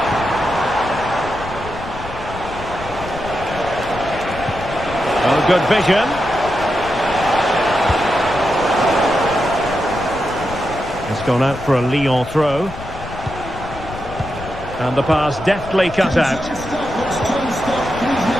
Oh, good vision. It's gone out for a Lyon throw. And the pass deftly cut out.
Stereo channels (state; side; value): noise; left; rumble, 12 dB below the sound